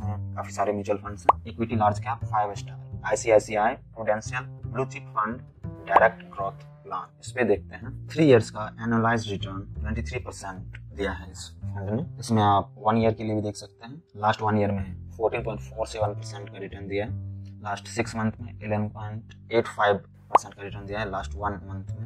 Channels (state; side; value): identical; both; correlation 1.00